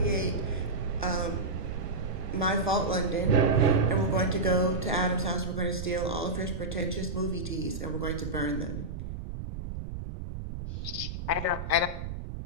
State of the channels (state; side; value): noise; right; rumble, 7 dB below the sound